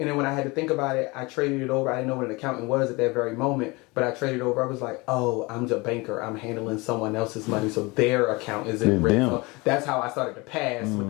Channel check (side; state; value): right; quieter; 24.9 dB